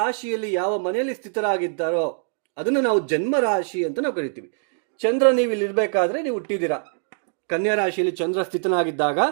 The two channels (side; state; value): left; silent; digital silence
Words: ಯಾವ ಮನೆಯಲ್ಲಿ ಸ್ಥಿತರಾಗಿದ್ದಾರೋ ಅದನ್ನು ನಾವು ಜನ್ಮ ರಾಶಿ ಅಂತ ನಾವು ಕರಿತೀವಿ. ಚಂದ್ರ ನೀವು ಇಲ್ಲಿ ಇರಬೇಕಾದ್ರೆ ನೀವು ಹುಟ್ಟಿದ್ದೀರಾ, ಕನ್ಯಾ ರಾಶಿಯಲ್ಲಿ ಚಂದ್ರ ಸ್ಥಿತನಾಗಿದ್ದಾಗ